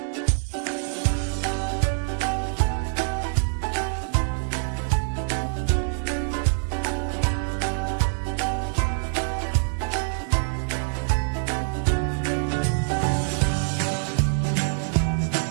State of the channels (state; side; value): silent; left; 56 dB below the other